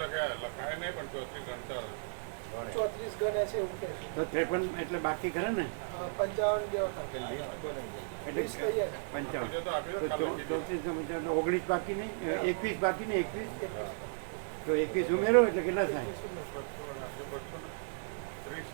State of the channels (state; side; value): silent; left; digital silence